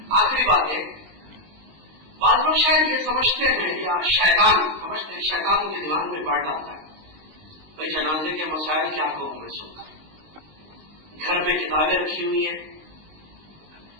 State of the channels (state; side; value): late; left; 19 ms